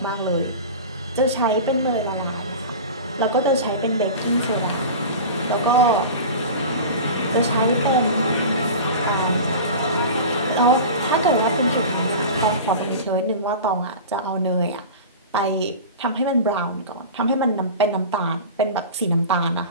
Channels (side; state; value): both; inverted; correlation -0.32